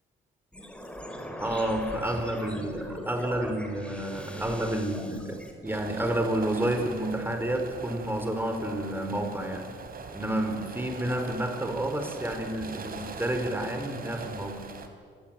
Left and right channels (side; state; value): both; normal; correlation 0.70